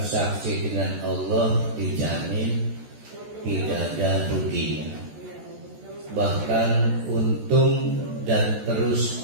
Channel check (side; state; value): left; late; 14 ms